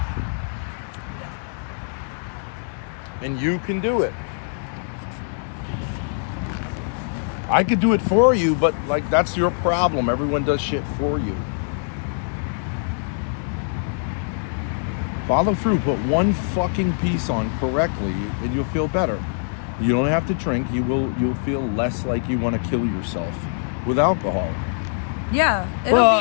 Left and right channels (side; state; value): right; silent; digital silence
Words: And you can do it. I could do it for you, but like that's your problem. Everyone does shit for you. Follow through, put one fucking piece on correctly and you'll feel better. You don't have to drink, you'll feel less like you want to kill yourself with alcohol. Yeah, it'll